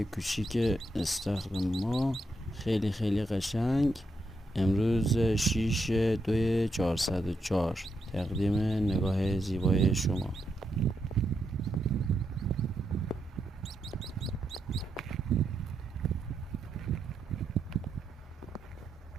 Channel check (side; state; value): both; normal; correlation 0.82